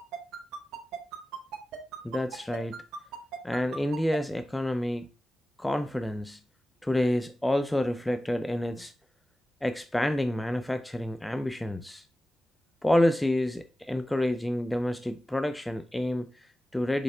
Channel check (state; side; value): normal; both; correlation 0.95